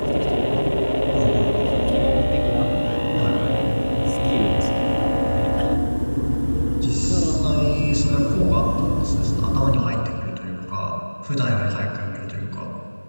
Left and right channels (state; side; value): inverted; both; correlation -1.00